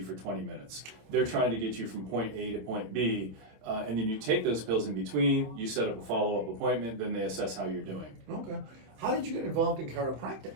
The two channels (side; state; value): left; late; 26 ms